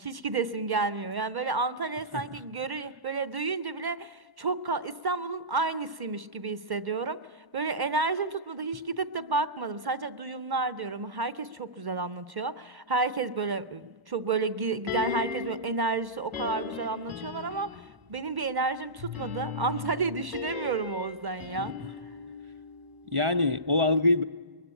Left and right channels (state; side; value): late; left; 1.1 ms